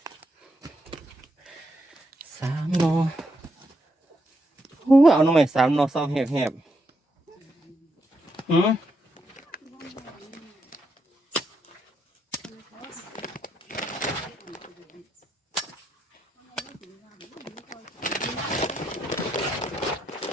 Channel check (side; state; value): both; normal; correlation 0.80